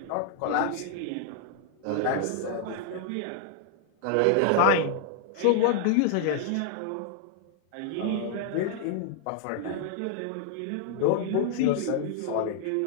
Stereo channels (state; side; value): different; both; correlation -0.01